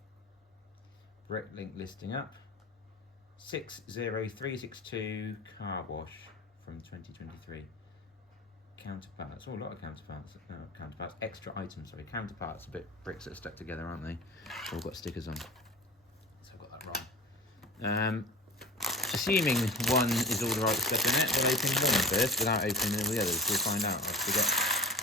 Bricklink listing up. 60362 Car Wash from 2023. Counterparts. Oh, a lot of counterparts. No, counterparts. Extra items. Sorry, counterparts. A bit bricks that are stuck together, aren't they? All got stickers on. So I've got that wrong. Assuming one is all the right stuff in it, we'll open one first without opening all the others. We'll find out. I forget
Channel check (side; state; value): both; normal; correlation 0.35